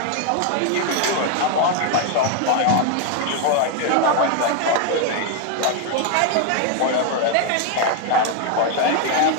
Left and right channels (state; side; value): different; both; correlation 0.01